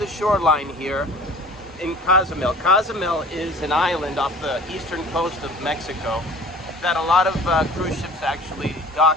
shoreline here in Cozumel. Cozumel is an island off the eastern coast of Mexico that a lot of cruise ships actually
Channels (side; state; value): both; normal; correlation 0.46